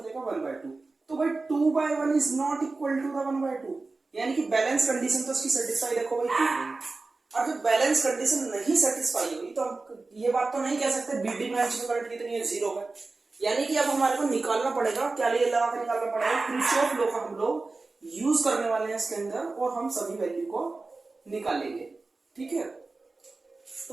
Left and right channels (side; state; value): left; quieter; 3.6 dB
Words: 1/2। तो भाई 2/1 is not equal to the 1/2, यानी कि बैलेंस कंडीशन तो उसकी सेटिस्फाई देखो भाई की गई। और जब बैलेंस कंडीशन नहीं सेटिस्फाई हुई तो हम ये बात तो नहीं कह सकते बीडी ब्रांच में करंट कितनी है, 0 है। यानी कि अब हमारे को निकालना पड़ेगा, क्या लिए लगा के निकालना पड़ेगा, किरचॉफ लॉ का हम लोग यूज करने वाले हैं इसके अंदर और हम सभी वैल्यू को निकालेंगे। ठीक है,